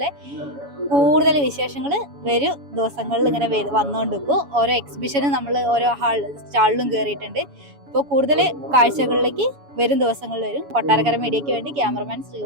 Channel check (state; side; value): late; left; 7.1 ms